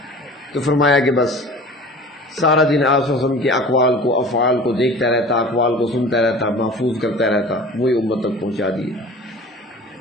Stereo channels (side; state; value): both; normal; correlation 0.41